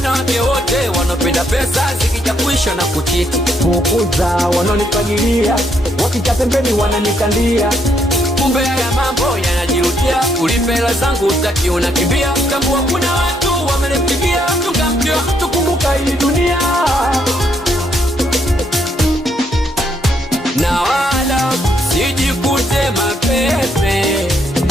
wote wanapenda pesa zikija kuisha na kuchiti. Fukuza wanonifagilia, wakija pembeni wananikandia. Kumbe haya mambo yanajirudia, ulipe hela zangu utaki unakimbia. Tambua kuna watu wamenipigia, tungamkia tukumbuka hii dunia. Na wala sijikute mapepe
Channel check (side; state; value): both; normal; correlation 0.73